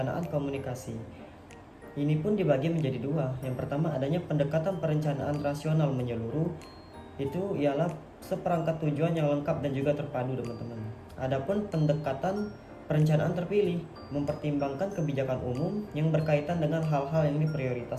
komunikasi. Ini pun dibagi menjadi dua. Yang pertama adanya pendekatan perencanaan rasional menyeluruh. Itu ialah seperangkat tujuan yang lengkap dan juga terpadu teman-teman. Adapun pendekatan perencanaan terpilih mempertimbangkan kebijakan umum yang berkaitan dengan hal-hal yang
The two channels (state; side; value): identical; both; correlation 1.00